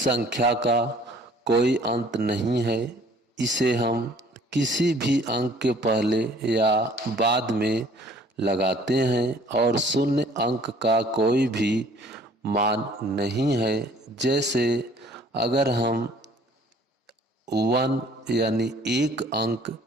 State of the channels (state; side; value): normal; both; correlation 0.55